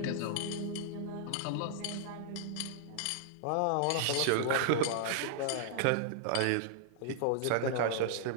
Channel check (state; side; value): different; both; correlation -0.01